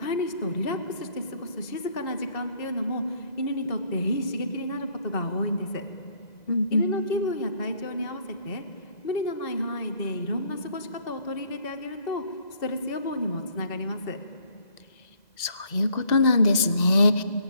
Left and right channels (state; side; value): late; right; 2.0 ms